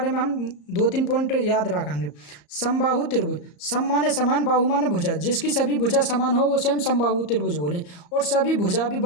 में हम 2-3 पॉइंट याद रखेंगे। समबाहु त्रिभुज, सम माने समान, बाहु माने भुजा, जिसकी सभी भुजा समान हो उसे हम समबाहु त्रिभुज बोले, और सभी भुजा भी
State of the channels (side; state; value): right; late; 34 ms